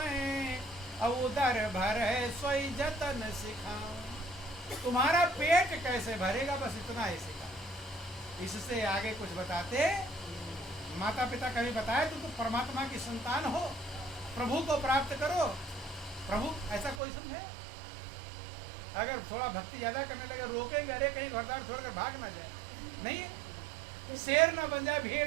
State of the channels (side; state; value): left; drops out; at 17.0 s